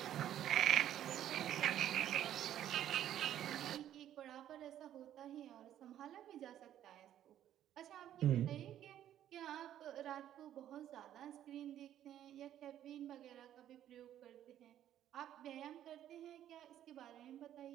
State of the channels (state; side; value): quieter; left; 11.4 dB